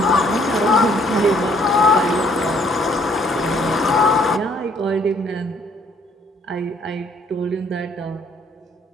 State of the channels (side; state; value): both; normal; correlation 0.63